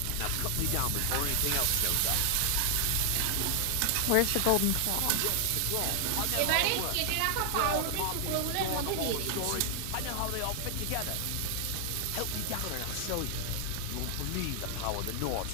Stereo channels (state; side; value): different; both; correlation 0.00